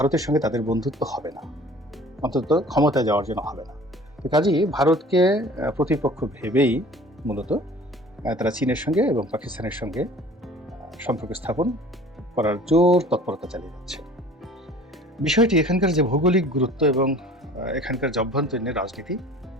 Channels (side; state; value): both; normal; correlation 0.47